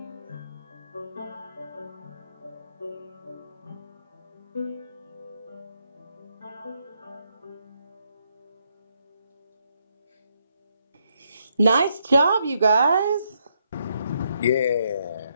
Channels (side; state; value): both; inverted; correlation -0.77